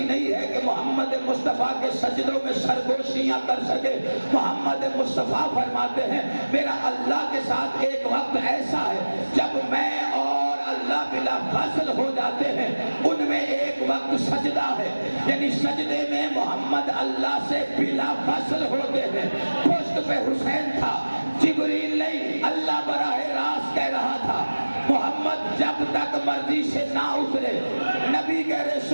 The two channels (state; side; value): inverted; both; correlation -1.00